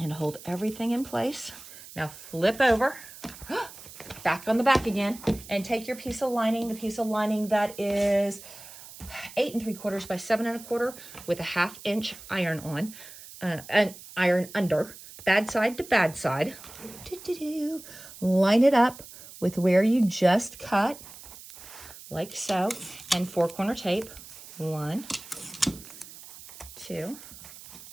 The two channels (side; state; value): right; noise; hiss, 16 dB below the sound